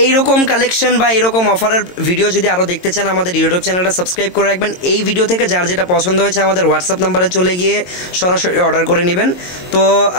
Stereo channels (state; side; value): late; right; 22 ms